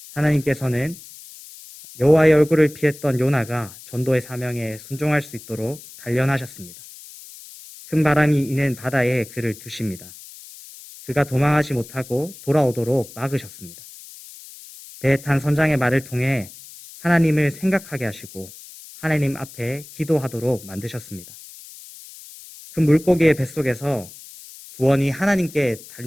하나님께서는 여호와의 얼굴을 피했던 요나가 전도의 사명에 순종할 수 있도록 단련하셨습니다. 큰 바람이 이는 바다에 그를 두십니다. 그가 도망하지 못하고 돌아오도록 막으셨습니다. 배에 탄 선장의 말을 통해 하나님을 생각하게 하시고 하나님 앞에 기도하도록 만드셨습니다. 큰 물고기의 뱃속에서 구원이 하나님께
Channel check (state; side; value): noise; left; hiss, 18 dB below the sound